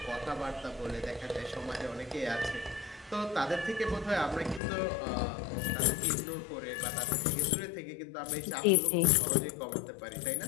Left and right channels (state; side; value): drops out; right; at 4.6 s